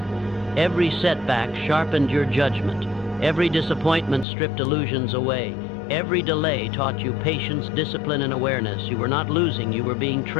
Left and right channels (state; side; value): drops out; right; at 4.2 s